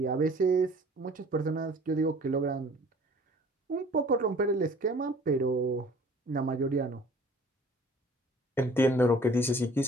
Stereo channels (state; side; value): normal; both; correlation 0.51